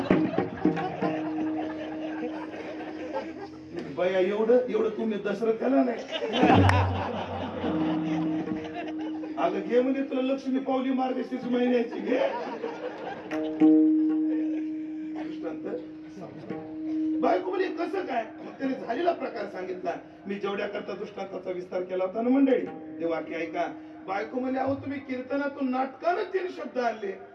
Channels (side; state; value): both; identical; correlation 1.00